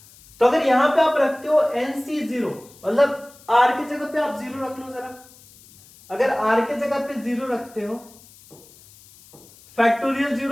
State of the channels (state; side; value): noise; left; hiss, 24 dB below the sound